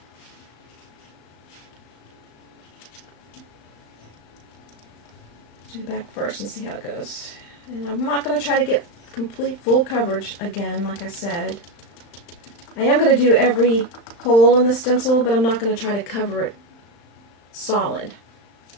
do the back first and see how it goes. And I'm not going to try to get complete full coverage again, like I said. I am going to do every hole in the stencil, but I'm not going to try to cover it solid.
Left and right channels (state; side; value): late; right; 36 ms